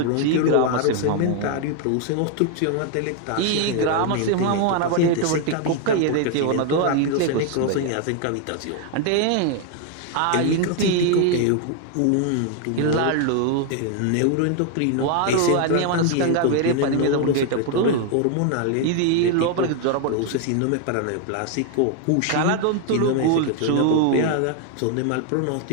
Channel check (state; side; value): different; both; correlation 0.00